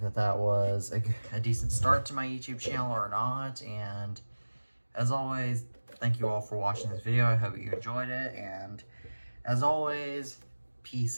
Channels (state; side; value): inverted; both; correlation -1.00